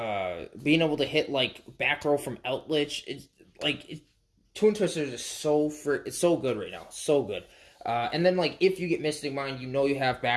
being able to hit, like, back row from Eldritch. It's like Twin Twisters is it's so good right now, so good. And then, like, if you get Mystic Mind, you know you have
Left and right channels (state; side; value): identical; both; correlation 1.00